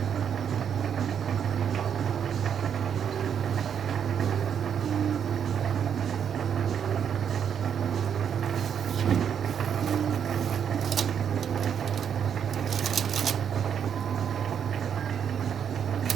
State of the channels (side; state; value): left; quieter; 8.1 dB